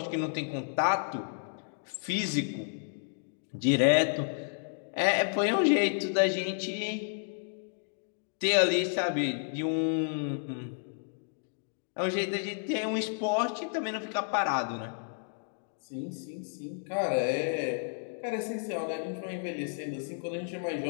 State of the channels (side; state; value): right; silent; digital silence